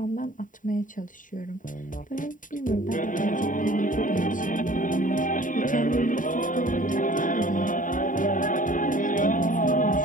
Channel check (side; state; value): right; late; 0.38 ms